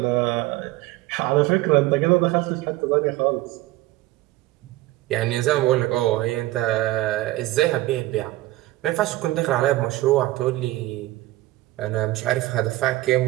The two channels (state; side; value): quieter; left; 17.6 dB